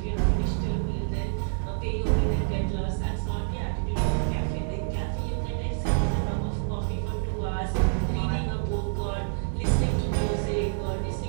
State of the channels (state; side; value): silent; left; digital silence